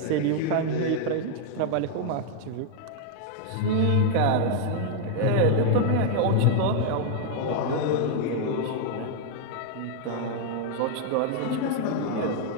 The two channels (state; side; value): different; both; correlation 0.00